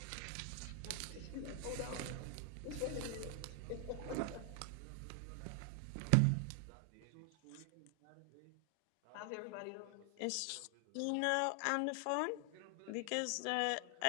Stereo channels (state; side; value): different; both; correlation 0.00